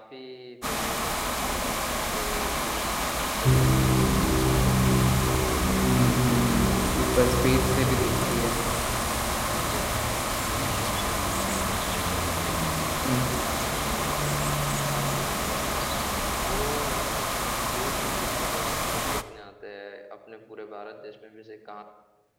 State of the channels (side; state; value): both; identical; correlation 1.00